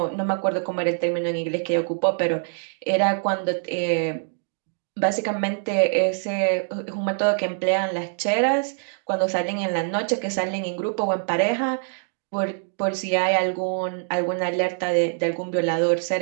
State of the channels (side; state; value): left; silent; digital silence